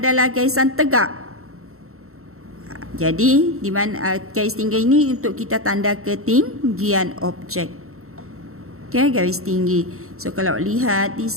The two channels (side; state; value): left; late; 0.63 ms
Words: garisan tegak. Jadi di mana garis tinggi ini untuk kita tanda ketinggian objek. Okay, garis tinggi. So kalau lihat di